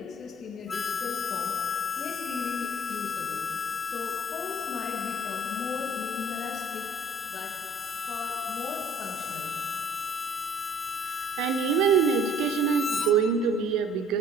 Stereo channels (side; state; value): both; normal; correlation 0.55